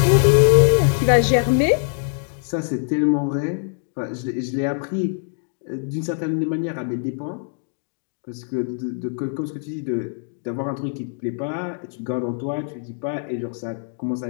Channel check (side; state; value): right; silent; 64 dB below the other